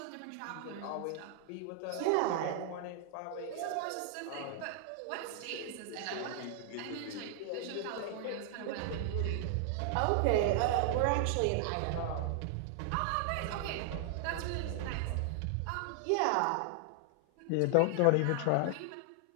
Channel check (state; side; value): different; both; correlation 0.00